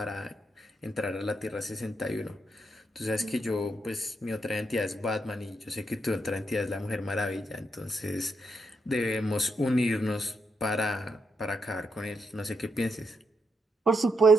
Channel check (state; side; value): normal; both; correlation 0.80